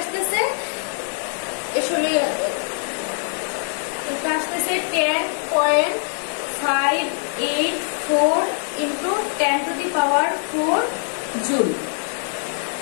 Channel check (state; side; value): silent; right; 64 dB below the other